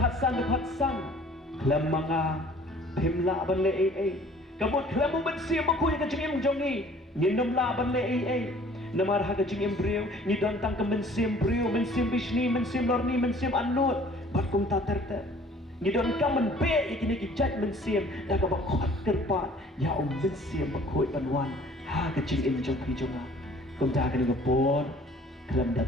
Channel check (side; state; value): both; normal; correlation 0.53